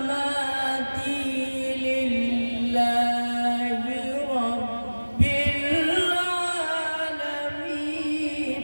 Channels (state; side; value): inverted; both; correlation -1.00